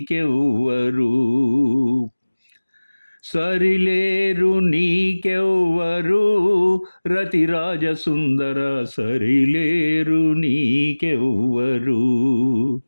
సరిలేరు నీకెవ్వరు రతిరాజ సుందర, సరిలేరు నీకెవ్వరు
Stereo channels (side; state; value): both; inverted; correlation -1.00